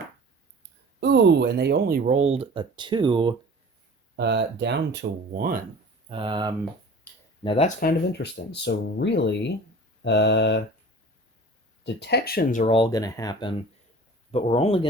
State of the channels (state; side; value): normal; both; correlation 0.41